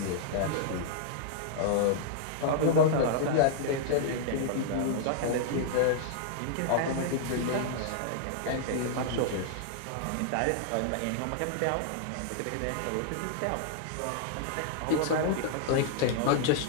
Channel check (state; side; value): different; both; correlation -0.01